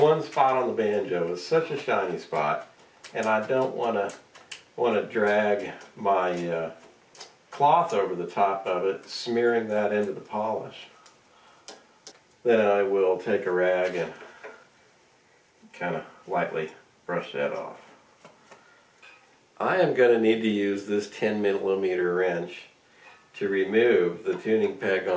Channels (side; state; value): both; identical; correlation 1.00